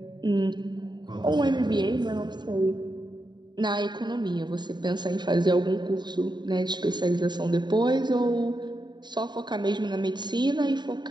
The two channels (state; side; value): late; left; 0.21 ms